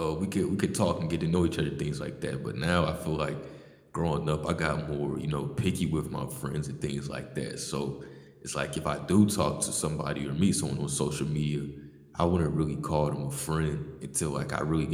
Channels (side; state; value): both; identical; correlation 1.00